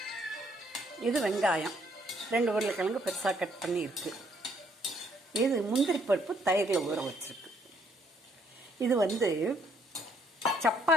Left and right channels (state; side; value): normal; both; correlation 0.68